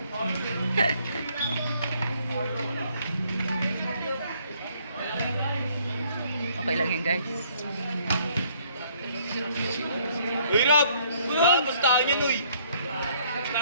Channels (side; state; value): both; inverted; correlation -0.64